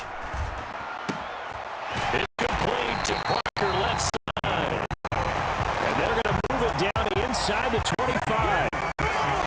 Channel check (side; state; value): both; identical; correlation 1.00